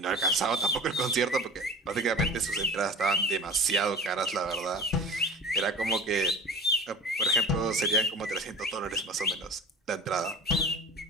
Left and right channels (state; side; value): normal; both; correlation 0.38